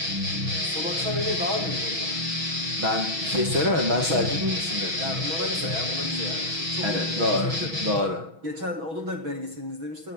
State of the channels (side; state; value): left; late; 6.2 ms